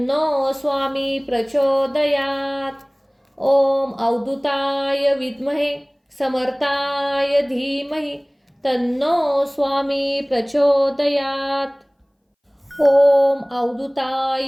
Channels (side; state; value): both; identical; correlation 1.00